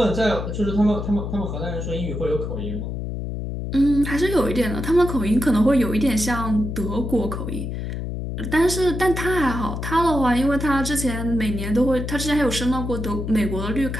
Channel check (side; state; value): left; noise; hum, 5 dB below the sound